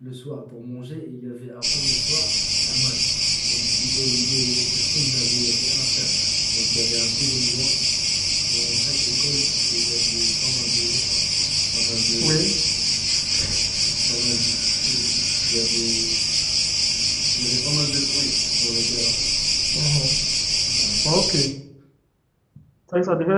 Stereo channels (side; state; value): both; identical; correlation 1.00